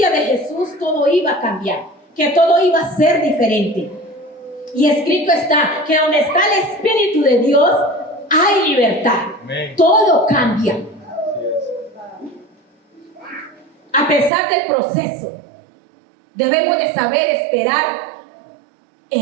de Jesús todo iba a cambiar, que todo iba a ser diferente. Y escrito está que donde está el Espíritu de Dios hay libertad. Amén. Todo cambia. Así es. A pesar del proceso, debemos de saber esperar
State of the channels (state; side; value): drops out; left; at 14.3 s